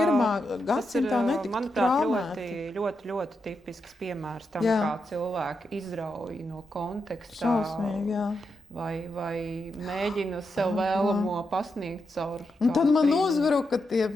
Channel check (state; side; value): normal; both; correlation 0.85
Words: gadsimtā netiktu traumēti. Ļoti, ļoti tipisks piemērs tam, kā cilvēki izrauj no kontekstā. Šausmīgi, jā. Vai mēģina sev vēlamo pasniegt caur. Un tad man uzbruka tie